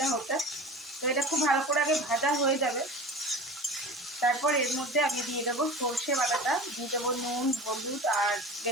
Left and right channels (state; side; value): normal; both; correlation 0.35